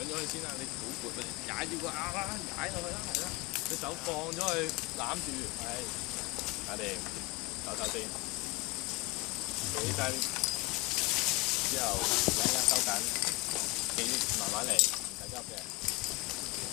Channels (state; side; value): quieter; right; 24.5 dB